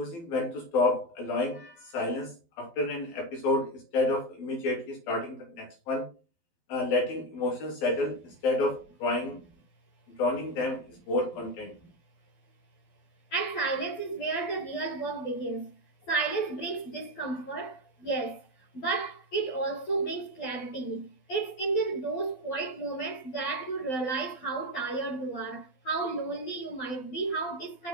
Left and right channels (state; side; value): late; right; 12 ms